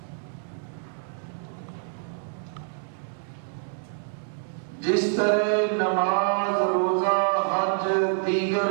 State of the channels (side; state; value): left; silent; 60 dB below the other